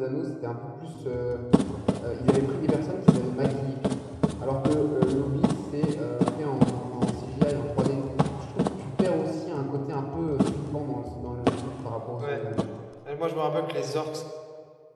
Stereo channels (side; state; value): both; identical; correlation 1.00